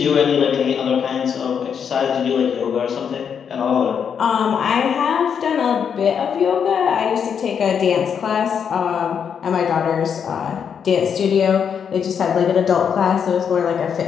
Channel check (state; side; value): quieter; right; 7.4 dB